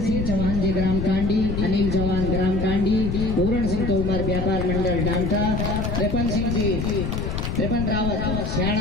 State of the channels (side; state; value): left; noise; rumble, 3 dB below the sound